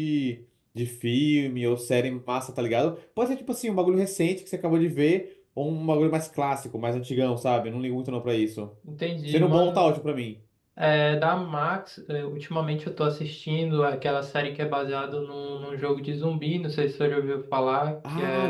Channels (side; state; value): both; identical; correlation 1.00